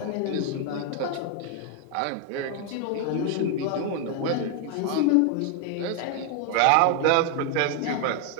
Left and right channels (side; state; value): both; different; correlation 0.01